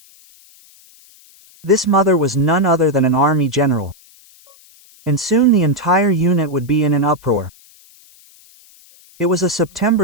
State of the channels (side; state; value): left; noise; hiss, 27 dB below the sound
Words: This mother was none other than an army general. And soon the entire unit would be in an uproar. It was a